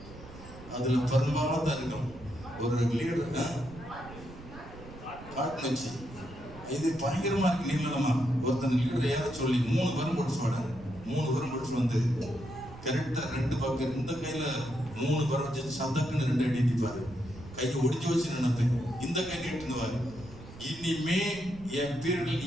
அதுல பெரும்பாலும் தான் இருக்கும். ஒரு லீடர் காட்டு வச்சு இது பயங்கரமா இருக்கு நீளமா. ஒருத்தன் லீடர் ஏற சொல்லி 3 பரம் போட்டு சொல்றாரு. 3 பரம் போட்டு வந்து கரெக்டா 2 பக்கம் இந்த கையில 3 பரம் வச்சு சந்தக்குன்னு 2 அடி அடிப்பாரு. கையை ஒடிச்சு வச்சு நினைப்பேன். இந்த கை நீட்டுவாரு. இனிமே என் பீரியட்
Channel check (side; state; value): right; noise; rumble, 16 dB below the sound